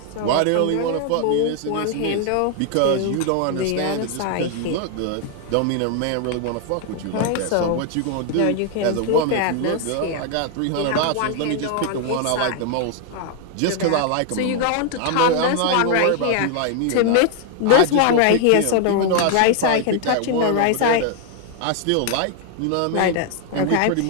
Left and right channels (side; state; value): both; different; correlation 0.00